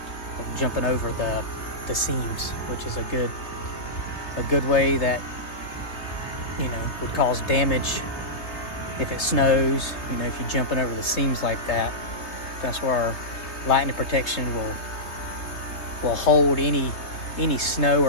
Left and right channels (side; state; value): right; late; 3.6 ms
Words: jumping over the seams, which is a good way that would cause damage if it snows. If you're jumping over the seams like that, that's where our lightning protection will hold any snow